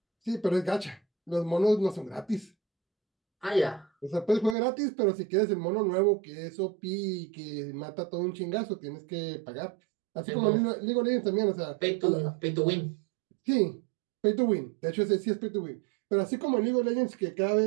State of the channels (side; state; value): left; drops out; at 4.5 s